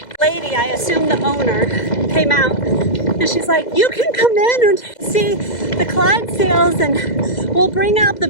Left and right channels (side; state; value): right; late; 2.0 ms